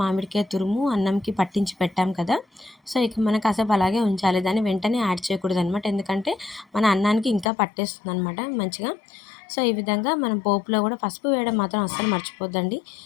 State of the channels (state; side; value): drops out; right; at 7.5 s